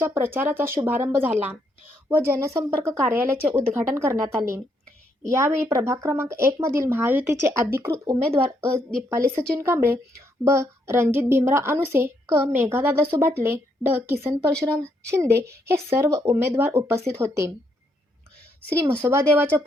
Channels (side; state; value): both; normal; correlation 0.75